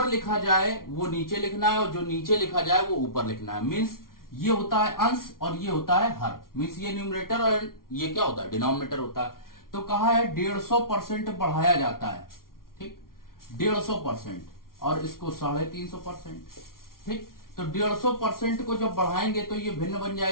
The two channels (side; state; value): right; late; 0.93 ms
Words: लिखा जाए वो नीचे लिखना है और जो नीचे लिखा जाए वो ऊपर लिखना है। मीन्स ये होता है अंश और ये होता है हर। मीन्स ये न्यूमरेटर और ये क्या होता है? डिनोमिनेटर होता है। तो कहा है 150% बढ़ाया जाता है। ठीक, 150% और इसको 350%। ठीक, तो 150% को जब बढ़ाएंगे तो ये भिन्न बन